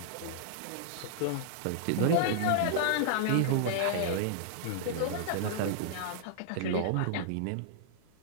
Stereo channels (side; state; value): both; different; correlation -0.01